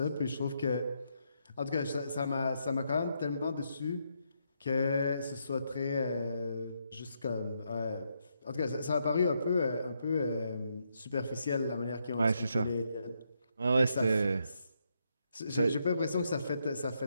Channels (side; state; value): both; inverted; correlation -0.79